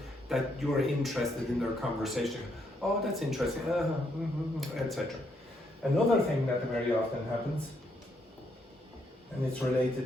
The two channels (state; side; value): normal; both; correlation 0.75